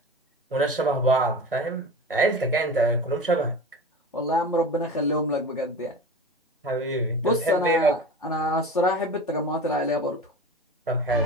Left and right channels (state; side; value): normal; both; correlation 0.32